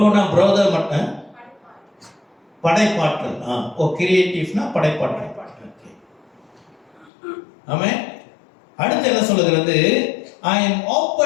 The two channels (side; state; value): right; drops out; at 7.1 s